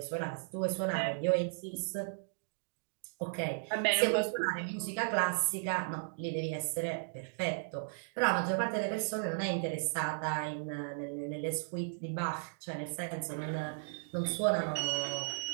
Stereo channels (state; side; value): silent; left; digital silence